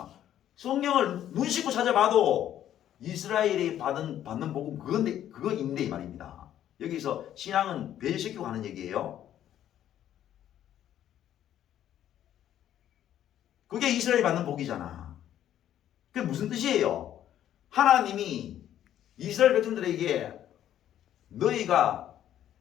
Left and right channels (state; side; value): quieter; right; 11.3 dB